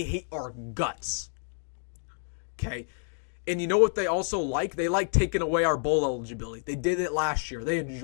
hate our guts. Okay? And you know what they also like? They like taking away our bowl eligibility. They did it last year. They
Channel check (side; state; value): right; silent; 59 dB below the other